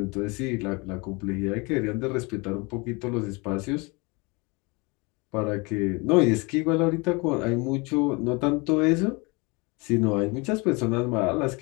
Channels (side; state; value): right; quieter; 27.9 dB